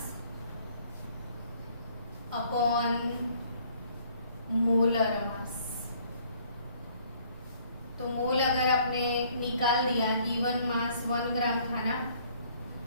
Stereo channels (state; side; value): inverted; both; correlation -0.60